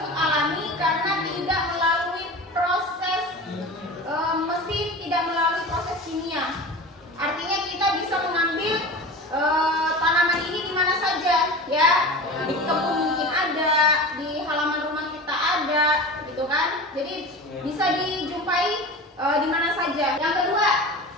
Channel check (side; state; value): both; normal; correlation 0.33